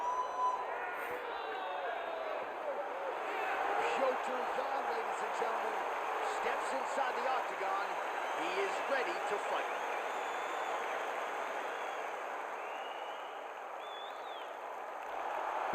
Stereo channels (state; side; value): normal; both; correlation 0.96